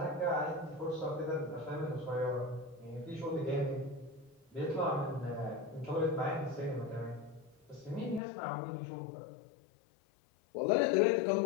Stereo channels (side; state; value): right; drops out; at 8.2 s